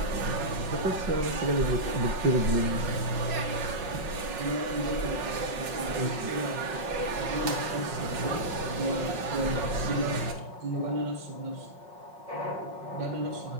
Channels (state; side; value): late; left; 5.5 ms